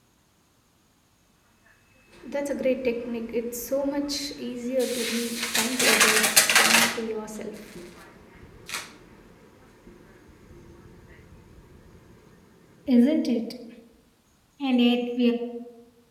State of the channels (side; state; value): both; identical; correlation 1.00